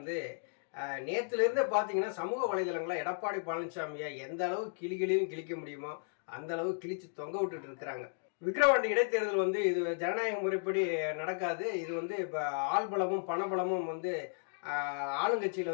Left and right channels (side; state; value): right; silent; digital silence